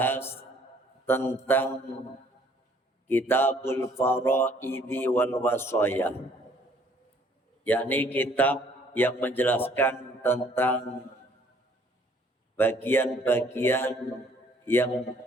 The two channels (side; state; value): both; normal; correlation 0.61